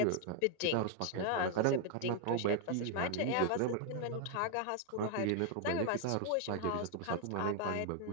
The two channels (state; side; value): different; both; correlation 0.01